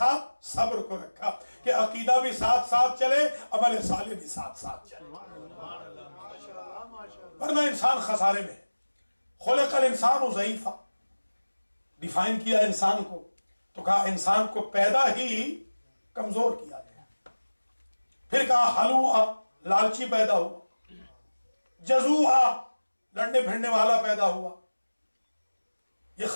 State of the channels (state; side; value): inverted; both; correlation -1.00